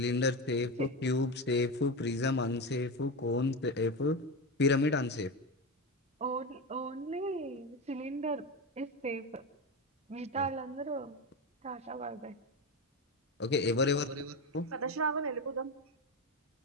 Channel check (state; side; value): normal; both; correlation 0.17